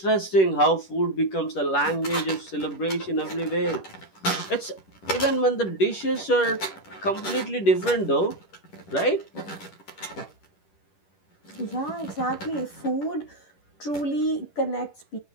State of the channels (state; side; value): late; right; 10 ms